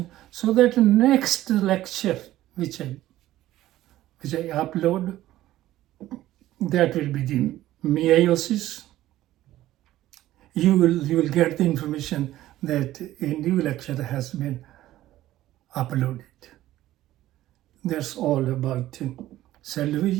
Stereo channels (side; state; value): left; quieter; 14.7 dB